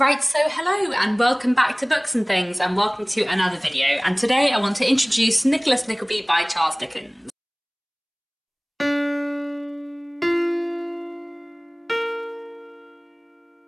so hello and welcome back to Books and Things and welcome to another video, and today I want to introduce Nicholas Nickleby by Charles Dickens.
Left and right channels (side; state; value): both; identical; correlation 1.00